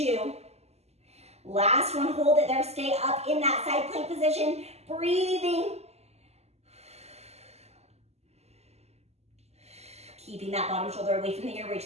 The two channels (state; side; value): late; left; 0.30 ms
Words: Last one, hold it there. Stay up in that side plank position. Breathing. Keeping that bottom shoulder away from the ear. Reach